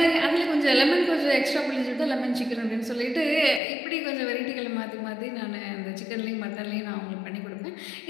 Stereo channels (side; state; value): right; drops out; at 3.6 s